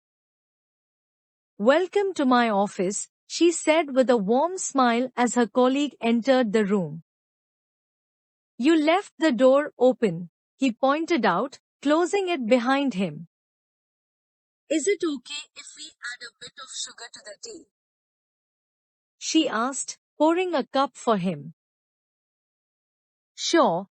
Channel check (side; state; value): both; identical; correlation 1.00